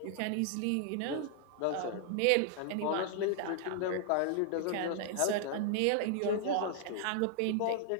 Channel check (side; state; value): both; different; correlation 0.00